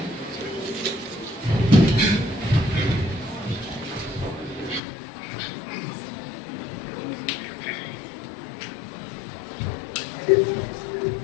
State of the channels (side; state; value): right; drops out; at 4.8 s